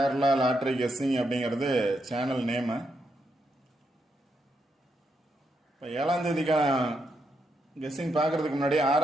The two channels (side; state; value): both; normal; correlation 0.81